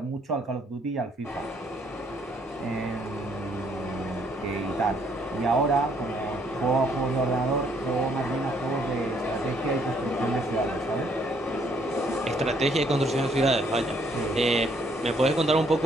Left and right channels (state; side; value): normal; both; correlation 0.67